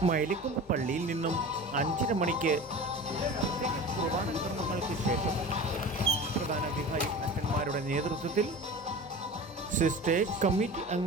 മൈലക്കൊമ്പ് പള്ളിയിൽ നിന്നും 5:30 മണിക്ക് പ്രത്യേക കുർബാന കർമ്മങ്ങൾക്ക് ശേഷം പ്രധാന വികാരി അച്ഛന്മാരുടെ നേതൃത്വത്തിൽ സിസ്റ്റേഴ്സ് കമ്മിറ്റി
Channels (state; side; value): normal; both; correlation 0.35